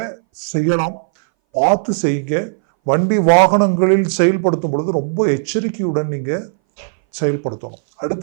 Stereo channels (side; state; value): left; silent; 62 dB below the other